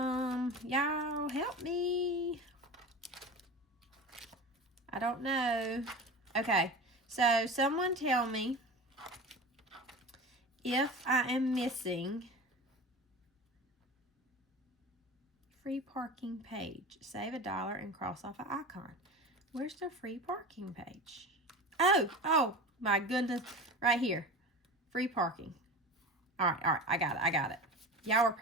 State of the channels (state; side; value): normal; both; correlation 0.31